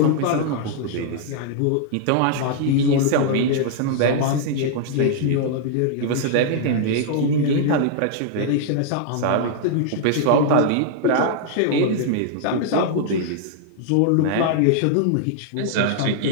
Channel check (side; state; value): both; different; correlation -0.01